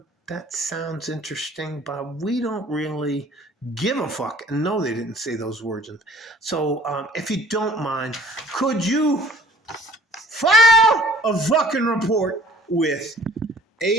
sounds interesting, but we don't really give a fuck. And no, they didn't say those words. And so if you don't mind, could you file a fucking report with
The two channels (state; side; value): normal; both; correlation 0.52